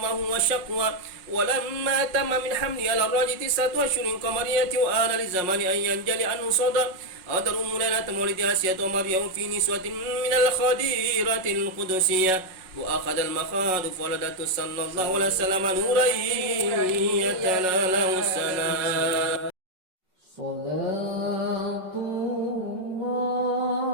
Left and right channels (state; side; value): late; left; 5.4 ms